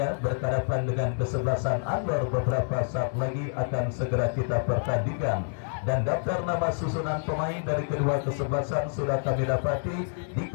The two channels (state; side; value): silent; right; digital silence